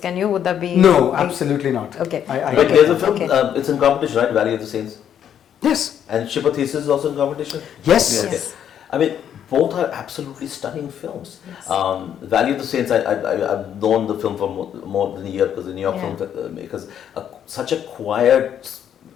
you? Would that be? No, absolutely not. Okay. But there's a film. It's in competition, right? Valley of the Saints. Yes. And Ship of Theseus is also in competition? Yes. Both are absolutely stunning films. Valley of the Saints, I've known the film for more than a year because the New York filmmakers, such a quiet,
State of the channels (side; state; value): right; quieter; 9.4 dB